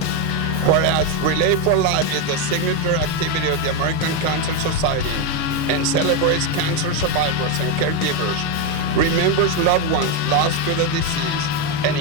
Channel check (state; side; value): late; right; 6.5 ms